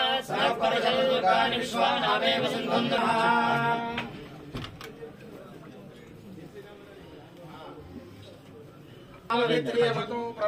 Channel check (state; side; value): identical; both; correlation 1.00